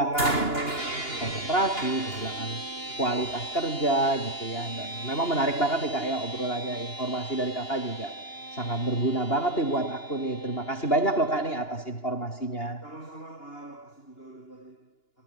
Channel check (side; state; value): right; late; 2.9 ms